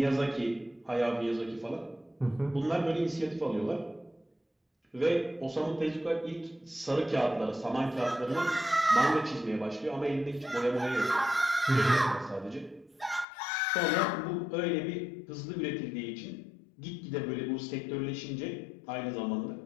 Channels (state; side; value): drops out; right; at 13.2 s